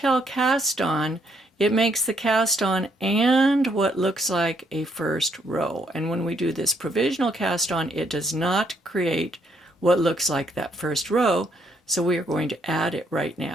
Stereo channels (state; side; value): normal; both; correlation 0.71